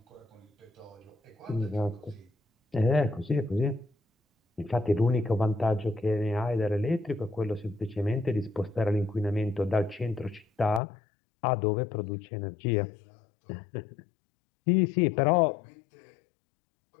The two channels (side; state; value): right; drops out; at 10.8 s